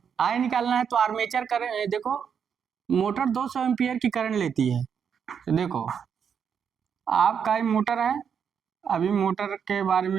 आई निकालना है। तो आर्मेचर करंट देखो, मोटर 200 एम्पीयर की करंट लेती है। तो देखो आपका मोटर है, अभी मोटर के बारे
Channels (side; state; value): left; quieter; 7.3 dB